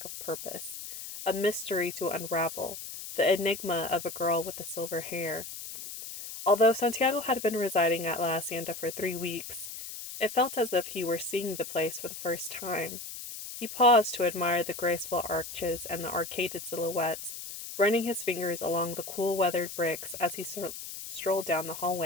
of purpose, a mystery to unravel, the enigma of a girl with the silver hair. Although Santiago had been residing at La Hacienda for 3 weeks, it felt as if he were seeing the place for the first time. He paused to admire the graceful arches and the arcaded silhouettes, running his fingers along the cool weathered bricks as he strolled down the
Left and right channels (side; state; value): left; noise; hiss, 9 dB below the sound